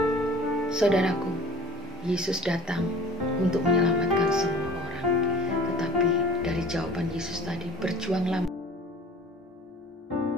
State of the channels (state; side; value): normal; both; correlation 0.45